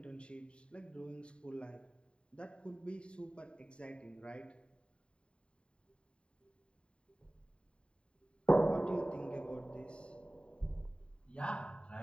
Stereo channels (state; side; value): late; right; 0.054 ms